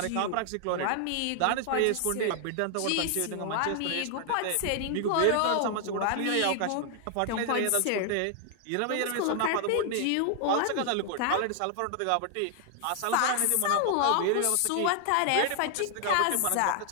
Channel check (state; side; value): different; both; correlation 0.00